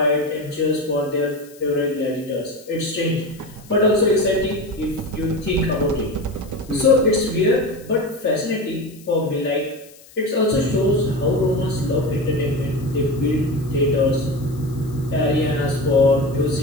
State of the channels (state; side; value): noise; left; hiss, 24 dB below the sound